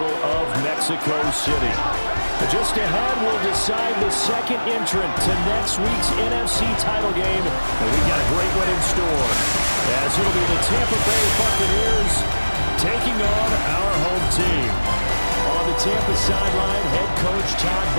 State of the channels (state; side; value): inverted; both; correlation -1.00